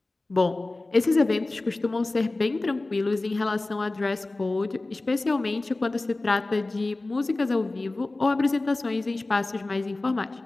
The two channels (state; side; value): quieter; right; 3.0 dB